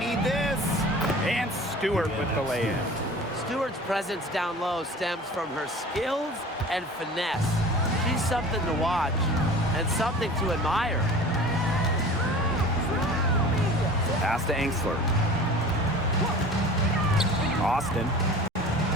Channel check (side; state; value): both; normal; correlation 0.41